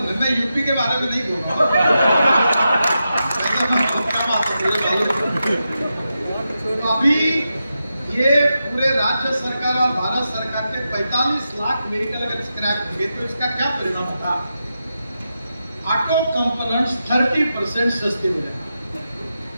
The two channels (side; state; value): both; inverted; correlation -0.88